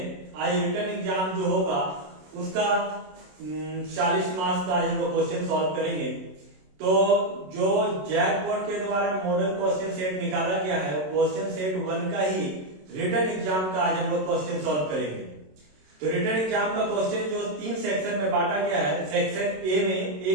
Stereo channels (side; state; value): left; late; 27 ms